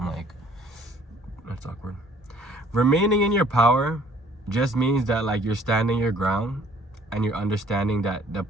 like, that's awkward. Remaining in your power just means that like you're standing your ground and you're understanding that the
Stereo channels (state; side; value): normal; both; correlation 0.57